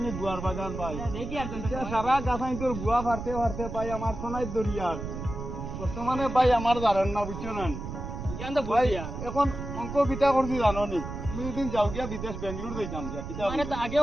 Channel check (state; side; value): noise; right; rumble, 7 dB below the sound